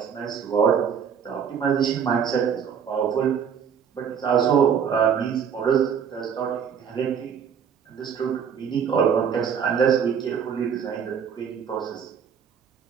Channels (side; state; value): left; quieter; 7.5 dB